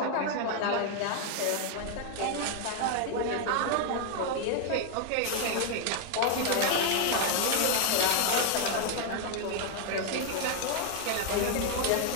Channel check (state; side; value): different; both; correlation 0.00